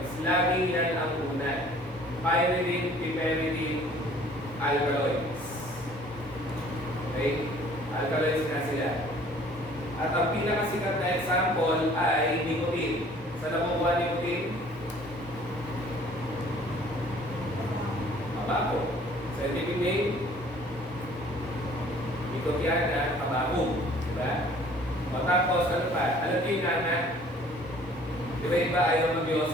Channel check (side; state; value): both; normal; correlation 0.54